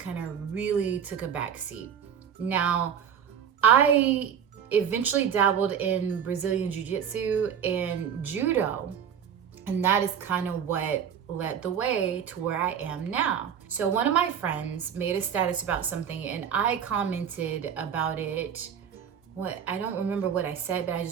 of really took a backseat. Now, I eventually dabbled in Brazilian Jiu-Jitsu and Judo, and that is kind of what led the way to where I am now. So one of my friends made a status about something and I commented about it. I don't remember what I said, but I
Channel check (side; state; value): left; quieter; 8.2 dB